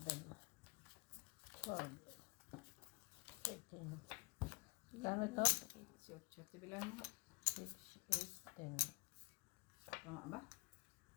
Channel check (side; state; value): right; quieter; 27.3 dB